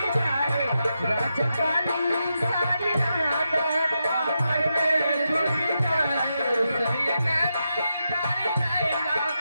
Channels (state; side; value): inverted; both; correlation -0.86